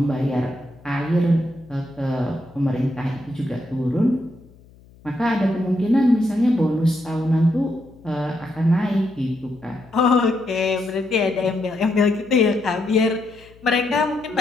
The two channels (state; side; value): noise; left; hum, 26 dB below the sound